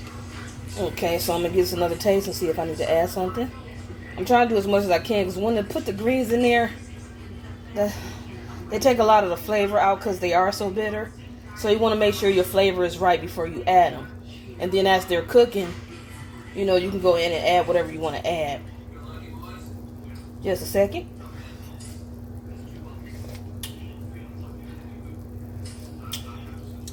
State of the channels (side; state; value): both; identical; correlation 1.00